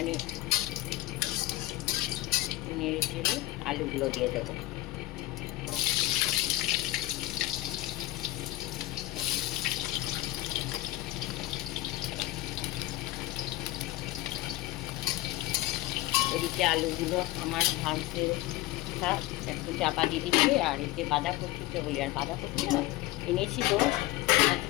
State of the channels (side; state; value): right; quieter; 17.6 dB